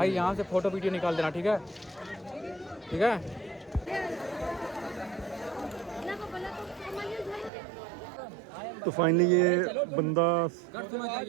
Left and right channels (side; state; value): left; drops out; at 7.5 s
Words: यहाँ से फ़ोटो वीडियो निकाल देना, ठीक है, ठीक है। तो फाइनली ये बंदा